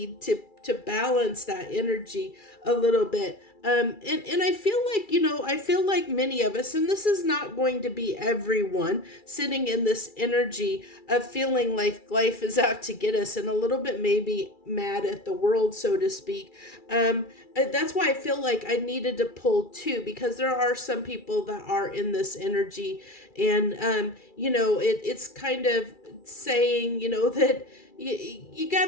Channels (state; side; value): late; right; 2.3 ms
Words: to to balance that energy a little bit. And I feel like, I feel like many of us, and this is not going to be everyone, sitting in this energy of feeling like life is out to get us and a little bit maybe mad at the world, so to speak. That's why I feel like I needed to pull two, because there are some people that are in this energy, and it's kind of saying, that you got